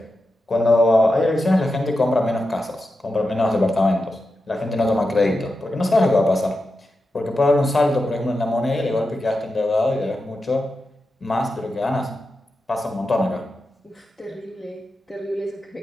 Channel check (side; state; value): both; normal; correlation 0.89